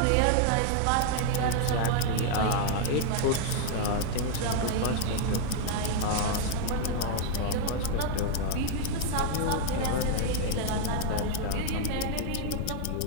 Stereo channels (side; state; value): both; different; correlation 0.00